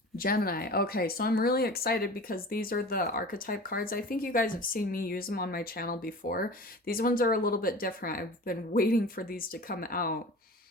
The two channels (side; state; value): both; normal; correlation 0.37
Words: Gemini. Okay, so I'm really excited because these are the archetype cards. I think you guys have seen me use them on my channel before. These ones are a little bit different. I've been waiting for these to come out,